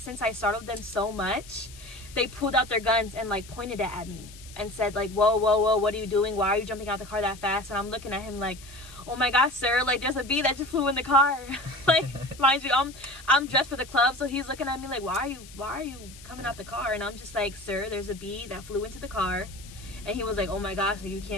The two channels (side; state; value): left; noise; hiss, 19 dB below the sound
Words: I startled them so much, they pulled out their guns and like pointed it at me and said like, whoa, what are you doing? Why are you jumping out the car that fast? And I'm looking at him like, oh my gosh, sir, like there's a bee that just flew in the car. Like, mind you, I'm dressed for the club, so he's looking at me like, why are you coming out the car? And I'm just like, sir, there's a bee that flew into the car. And he was like, oh my gosh, like, you